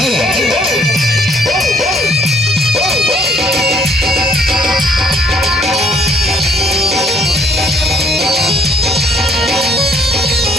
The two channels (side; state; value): both; normal; correlation 0.62